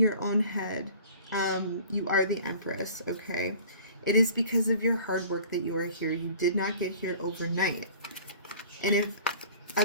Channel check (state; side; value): inverted; both; correlation -0.47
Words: own head. You are the Empress, okay? It is because of your hard work that you are here. You did not get here overnight. And if